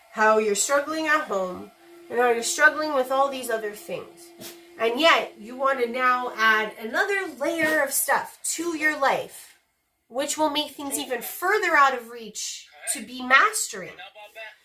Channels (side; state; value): both; identical; correlation 1.00